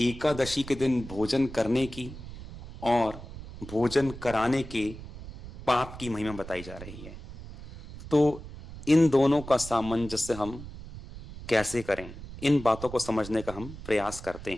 के दिन भोजन करने की और भोजन कराने के पाप की महिमा बताई जा रही है। तो इन दोनों का सामंजस्य हम कैसे करें, इन बातों को समझने का हम प्रयास करते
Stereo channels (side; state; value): right; noise; rumble, 13 dB below the sound